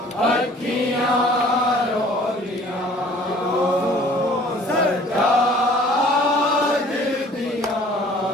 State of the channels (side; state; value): both; normal; correlation 0.52